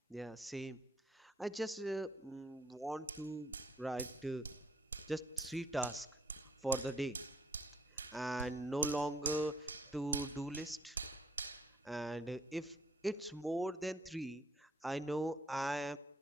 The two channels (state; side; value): normal; both; correlation 0.64